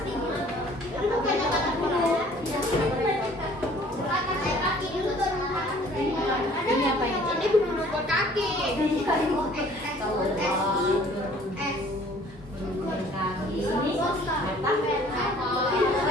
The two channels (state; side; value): normal; both; correlation 0.54